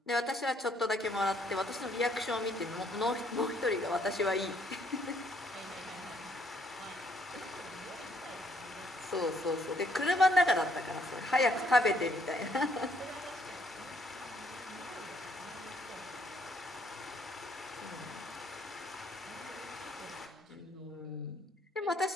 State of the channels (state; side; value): normal; both; correlation 0.67